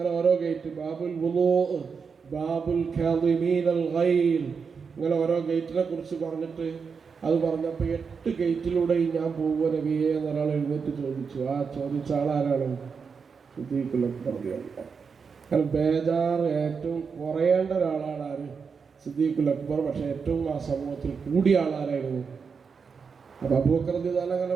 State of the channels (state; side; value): quieter; left; 5.7 dB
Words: ഓരോ ഗേറ്റ്. ബാബുൽ വുളൂ, ബാബുൽ കാദിമീനൽ ഗൈൽ, ഇങ്ങനെ ഓരോ ഗേറ്റിനെ കുറിച്ച് പറഞ്ഞിട്ട് അത് പറഞ്ഞപ്പോൾ 8 ഗേറ്റിലൂടെയും ഞാൻ പോകുമോ നബിയെ എന്നൊരാൾ എഴുന്നേറ്റ് ചോദിച്ചു. ആ ചോദിച്ച ആളാരാണ്? സിദ്ദീഖ് അക്ബർ. കാരണം ബേജാറ് ഏറ്റവും കുറയേണ്ട ഒരാളാണ് ആര്? സിദ്ദീഖ് അക്ബർ. പക്ഷെ ഏറ്റവും ആ സമൂഹത്തിൽ കൂടിയ ആളാരായിരുന്നു? അപ്പോൾ അബൂബക്കർ റളിയല്ലാഹു അൻഹു അങ്ങനെ